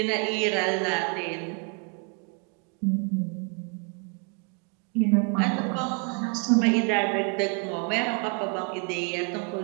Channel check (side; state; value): left; quieter; 35.0 dB